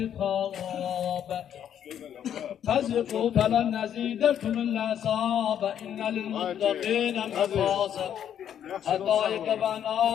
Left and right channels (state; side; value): quieter; right; 9.6 dB